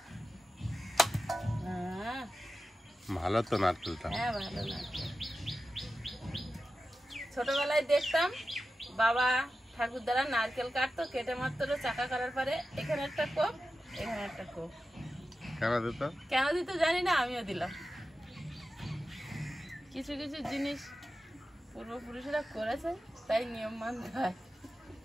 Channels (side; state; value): both; normal; correlation 0.92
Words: ভালো তো নারকেলটা। হ্যাঁ ভালো নারকেল। ছোটবেলায় দেখতাম বাবা ঠাকুরদারা নারকেল কাটতো, কেটে মাত্র চাকা করার পরে এখানে একটা কোপ, এখানে একটা কোপ। কেন দিত জানি না, আমিও দিলাম। কিছু কিছু জিনিস পূর্বপুরুষরা করেছে, তাই নিয়ম মানতে হয়।